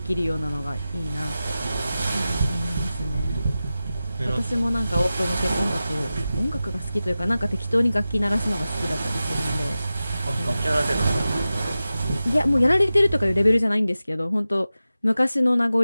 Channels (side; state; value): both; inverted; correlation -0.94